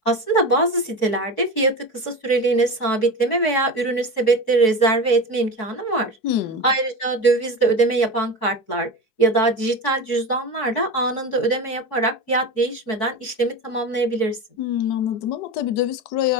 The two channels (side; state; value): right; late; 4.6 ms